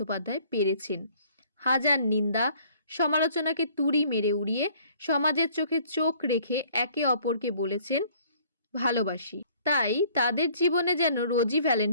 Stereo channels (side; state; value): both; inverted; correlation -0.57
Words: পেরেছেন। হাজার নিন্দা সমালোচনাকে তুড়ি মেরে উড়িয়ে সমাজের চোখে চোখ রেখে একে অপরকে বলেছেন ভালোবাসি। তাই তাদের জীবনে যেন রোজই